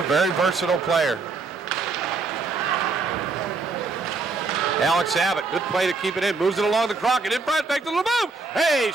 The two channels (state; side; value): quieter; left; 4.1 dB